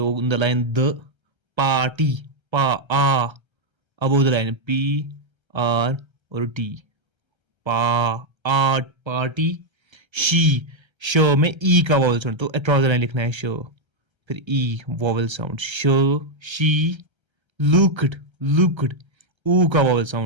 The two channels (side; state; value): left; late; 1.3 ms